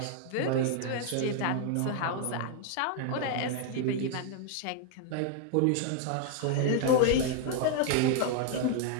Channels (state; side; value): different; both; correlation 0.00